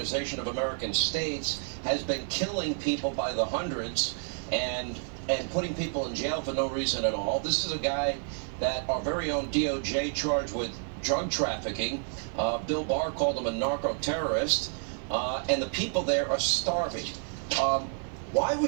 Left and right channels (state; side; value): silent; left; 58 dB below the other